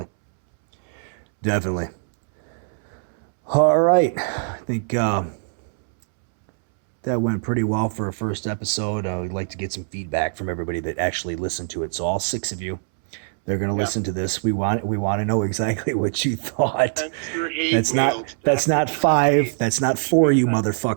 All right. I think that went pretty well for a first episode. We'd like to get some feedback from everybody that actually listened to it. So all 6 of you, they're going to listen to this. We want to know exactly what you thought. That's not 5. That's not 4, you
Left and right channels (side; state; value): left; silent; 64 dB below the other